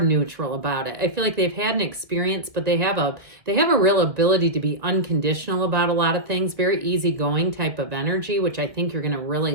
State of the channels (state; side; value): late; left; 1.7 ms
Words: about it. I feel like they've had an experience, but they have a real ability to be unconditional about a lot of things, very easygoing type of energy, which I think you're going to really